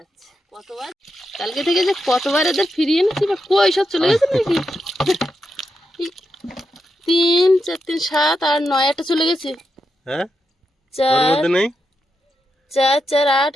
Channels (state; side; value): normal; both; correlation 0.85